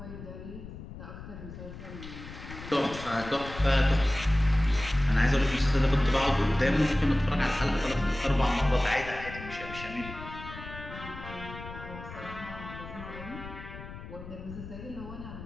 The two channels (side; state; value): left; noise; rumble, 12 dB below the sound